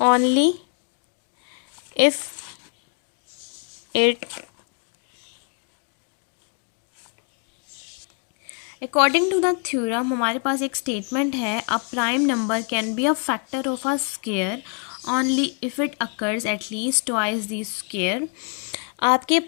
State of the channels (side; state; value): right; quieter; 37.6 dB